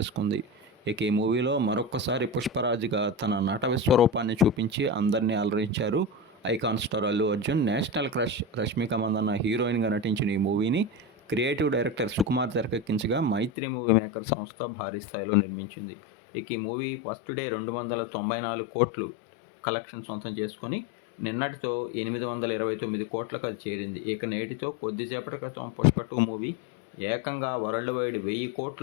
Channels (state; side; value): drops out; right; at 13.5 s